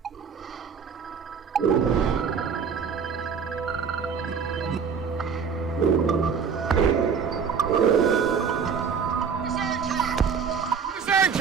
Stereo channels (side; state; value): left; quieter; 6.4 dB